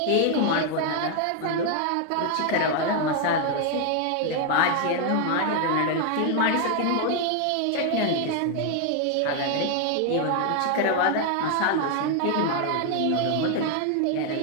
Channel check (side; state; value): both; different; correlation 0.00